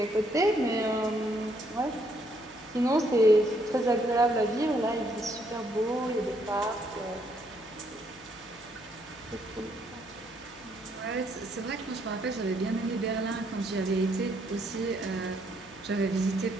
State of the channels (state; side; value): noise; left; hum, 26 dB below the sound